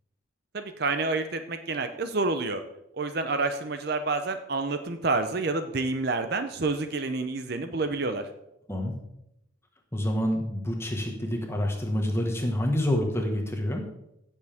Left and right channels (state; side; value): normal; both; correlation 0.39